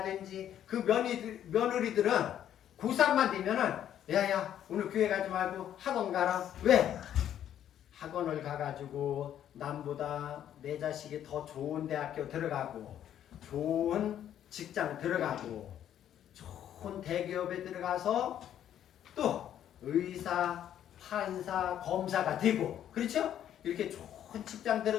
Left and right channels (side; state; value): right; quieter; 10.6 dB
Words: 그 며느리들은 고3만 되면은 야 오늘 교회 가지 말고 학원 가라. 왜? 학원을 가가지고 남보다 내 자식이 더 좋은 대학교 들어가고 좋은 직장 들어가고 좋은 대기업에 들어가서 또 의사, 판사, 검사가 되고 그렇죠? 이렇게 좋은 직장